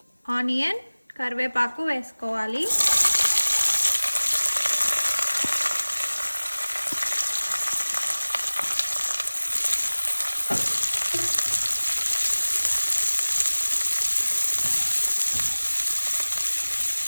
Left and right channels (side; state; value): both; inverted; correlation -1.00